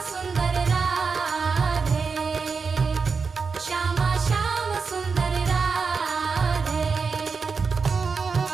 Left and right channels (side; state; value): left; quieter; 5.1 dB